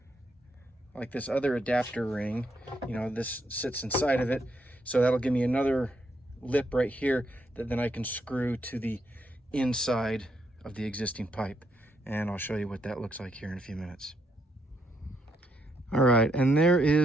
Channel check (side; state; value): both; normal; correlation 0.76